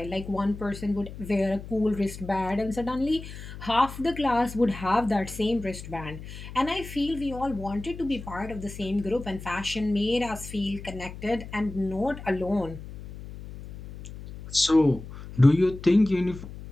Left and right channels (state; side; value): noise; left; hum, 12 dB below the sound